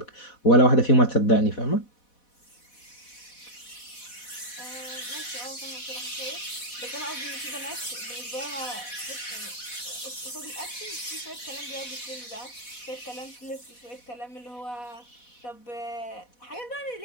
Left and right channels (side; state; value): right; late; 4.1 ms